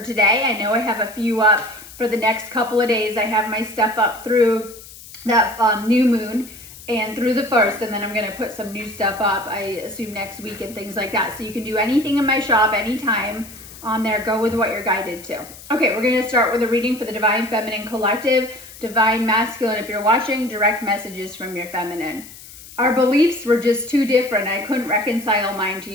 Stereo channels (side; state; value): left; noise; hiss, 17 dB below the sound